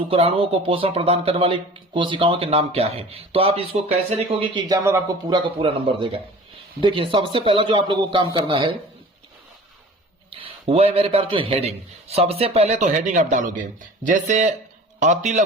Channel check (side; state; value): both; normal; correlation 0.43